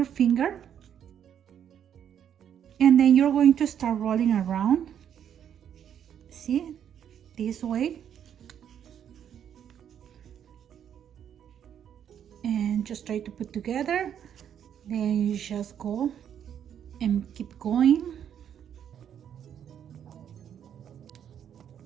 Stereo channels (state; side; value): quieter; left; 9.1 dB